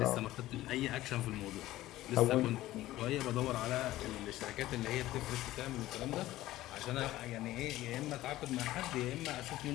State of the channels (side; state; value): right; quieter; 15.8 dB